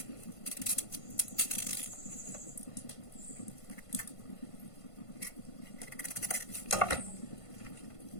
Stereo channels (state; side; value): late; right; 1.5 ms